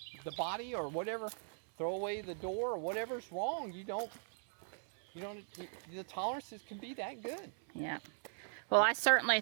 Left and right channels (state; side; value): silent; left; digital silence